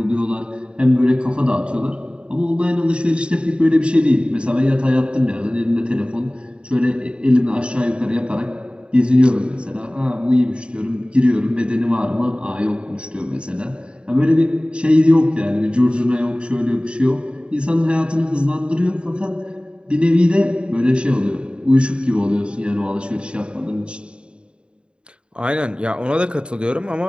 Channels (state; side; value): late; left; 0.053 ms